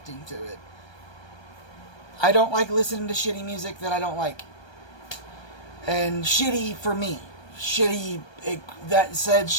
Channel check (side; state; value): right; late; 1.3 ms